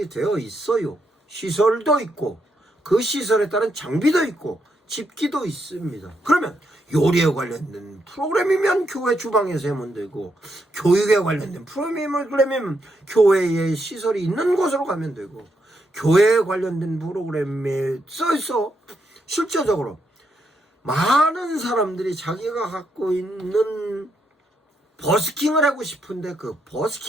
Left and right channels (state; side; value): normal; both; correlation 0.80